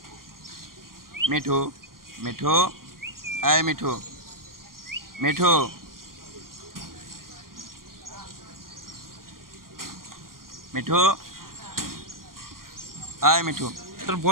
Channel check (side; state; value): left; late; 0.91 ms